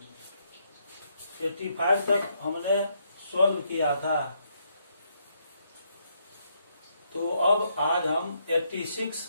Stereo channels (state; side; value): inverted; both; correlation -0.75